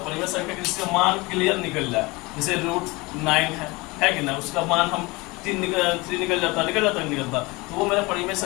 परिमेय संख्या जिसका मान क्लियर निकल जाए, जैसे √9 है कि ना उसका मान हम 3 निकल जाता तो वो मेरा परिमेय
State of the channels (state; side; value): quieter; right; 24.0 dB